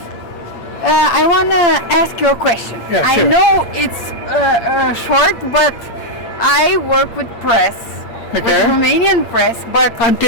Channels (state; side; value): late; right; 8.6 ms